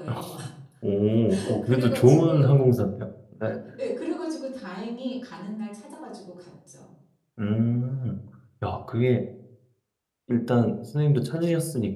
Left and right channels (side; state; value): both; identical; correlation 1.00